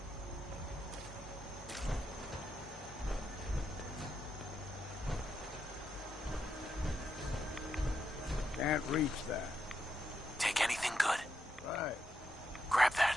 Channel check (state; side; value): normal; both; correlation 0.82